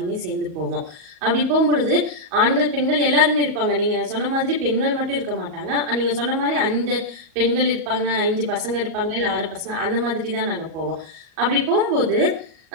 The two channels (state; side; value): late; left; 38 ms